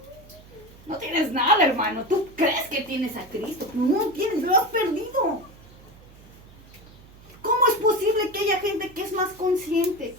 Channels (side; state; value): right; noise; hum, 23 dB below the sound